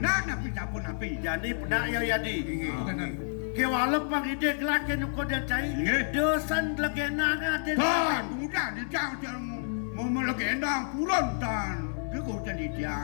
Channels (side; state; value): right; silent; digital silence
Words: api sapun api. jadi penak ya yadi Inge. ke walaupun ide gelak ke nuko dia cai Inge. dosan legena ada Tan, udah dijang mau melegenda purun tan. Dia kau jadi